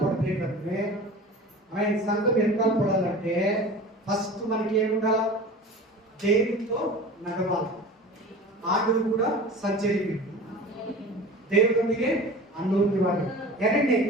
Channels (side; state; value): both; normal; correlation 0.37